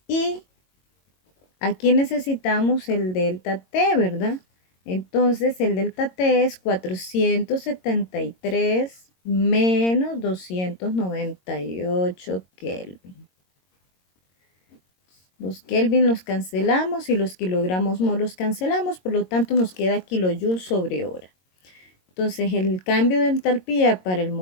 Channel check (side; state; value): right; late; 22 ms